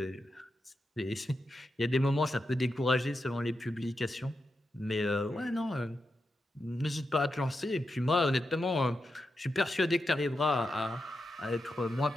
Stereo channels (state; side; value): normal; both; correlation 0.88